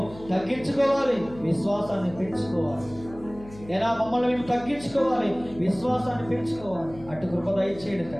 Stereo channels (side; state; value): left; noise; hum, 18 dB below the sound